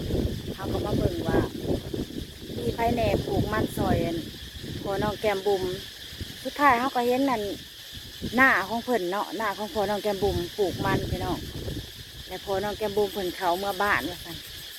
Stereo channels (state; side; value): identical; both; correlation 1.00